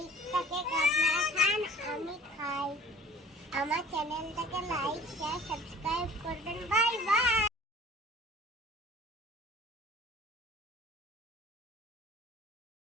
কেক আপনারা খান, আমি খাই। আমার চ্যানেলটাকে লাইক শেয়ার সাবস্ক্রাইব করবেন। Bye bye.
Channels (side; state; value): both; normal; correlation 0.48